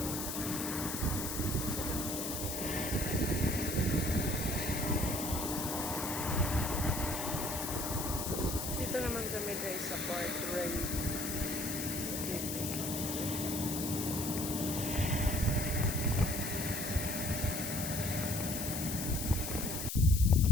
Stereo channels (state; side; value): noise; left; hiss, 4 dB below the sound